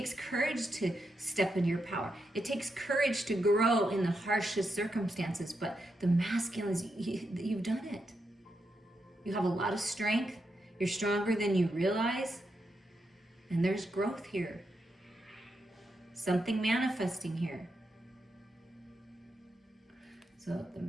courage to step in your power. It takes courage to grow in the harshest circumstances. But the masculines, you've done it. You have a lot of strength. You're stronger than you realize. And there's growth here. Something manifesting here. So the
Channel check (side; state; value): both; normal; correlation 0.84